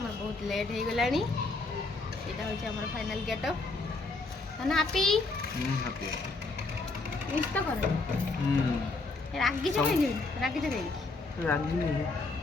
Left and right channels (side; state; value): right; quieter; 3.5 dB